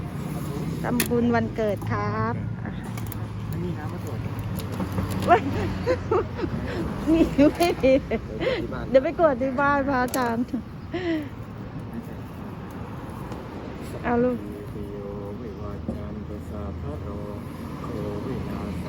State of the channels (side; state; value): both; identical; correlation 1.00